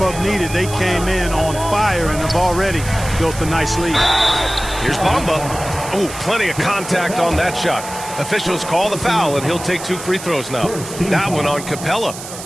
needed. They came in on fire and have already built a nice lead. Here's Bamba. Oh, plenty of contact on that shot. Officials call the foul, and he'll take 2 free throws now. That one on Capella.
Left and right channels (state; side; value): noise; right; hiss, 12 dB below the sound